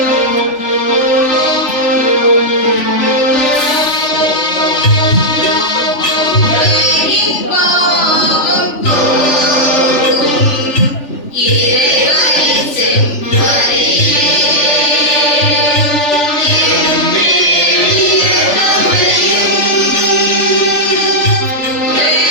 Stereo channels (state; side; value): late; right; 3.4 ms